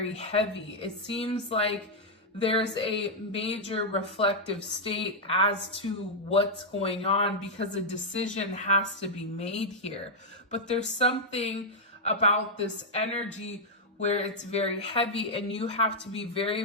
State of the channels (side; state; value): both; normal; correlation -0.04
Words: heavy. It seems like there's a major reflective state as to what's going on because a decision has to be made here. But there's something about this energy where it's very heavy and you have to be very,